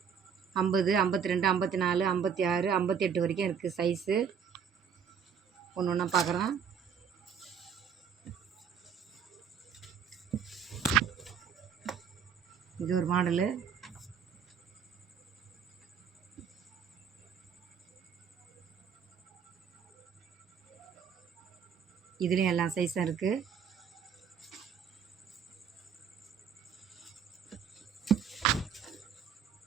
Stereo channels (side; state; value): left; quieter; 7.3 dB